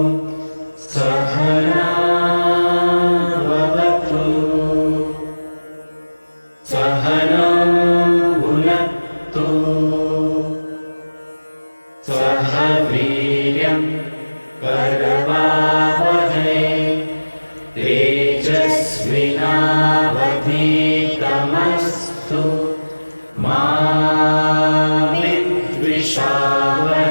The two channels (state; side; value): inverted; both; correlation -1.00